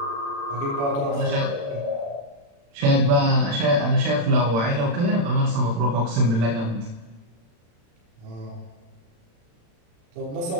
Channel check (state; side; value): late; left; 35 ms